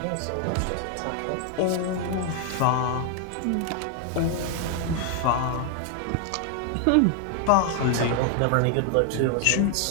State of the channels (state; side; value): different; both; correlation 0.00